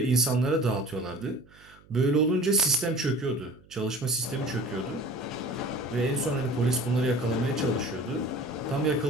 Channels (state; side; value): noise; right; hum, 27 dB below the sound